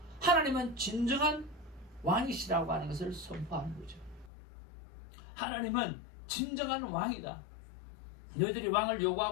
하나님은 진정한 왕이시라고 하는 것을 선포하는 거죠. 하나님은 진정한 왕이다. 너희들이 왕을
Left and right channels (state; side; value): drops out; right; at 4.3 s